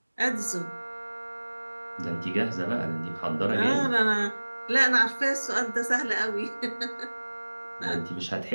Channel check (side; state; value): both; inverted; correlation -1.00